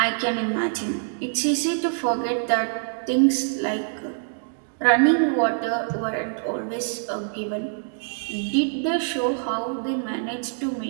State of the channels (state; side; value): silent; left; digital silence